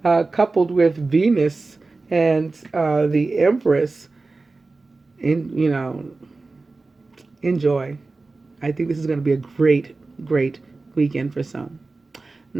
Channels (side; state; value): left; quieter; 3.6 dB